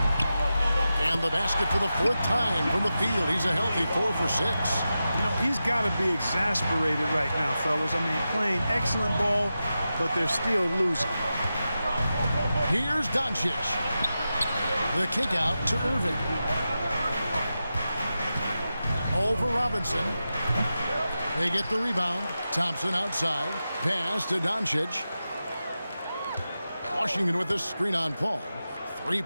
And the basket for the 4th time from the field. He's a healthy 4 for 6. You know, he's got to be exasperated right now, fellas. I mean, playing excellent ball, but they're still losing. Here's Doncic. The kick out to Irving. Over Robinson. They get the rebound. Thompson outside. Pass to Doncic. Washington with the screen on Paul.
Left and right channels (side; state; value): both; inverted; correlation -0.91